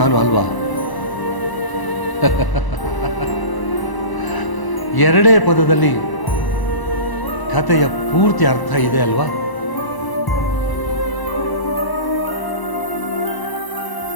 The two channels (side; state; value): right; late; 1.0 ms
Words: ಅಲ್ವಾ? ಎರಡೇ ಪದದಲ್ಲಿ ಕಥೆಯ ಪೂರ್ತಿ ಅರ್ಥ ಇದೆ ಅಲ್ವಾ?